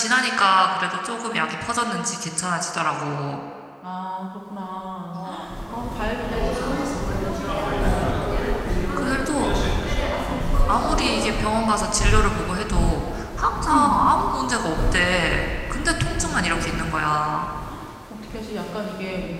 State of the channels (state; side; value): identical; both; correlation 1.00